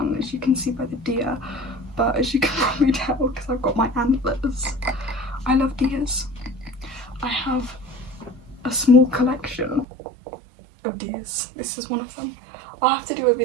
as you can see by the deer, but as you can probably tell because I've got my antlers, I love deers. I have a small collection of deers. This is one of them. I'll have to do a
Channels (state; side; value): drops out; left; at 9.9 s